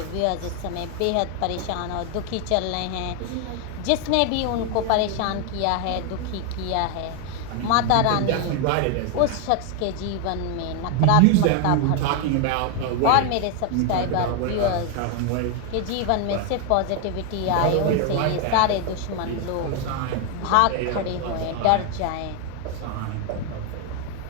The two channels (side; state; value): both; different; correlation 0.01